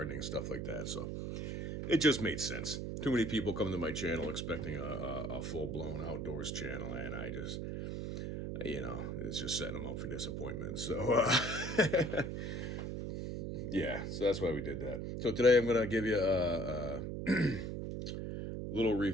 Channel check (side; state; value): right; noise; hum, 4 dB below the sound